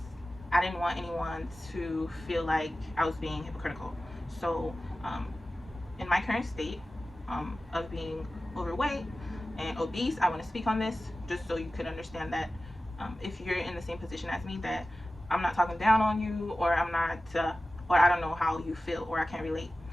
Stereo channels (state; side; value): normal; both; correlation 0.95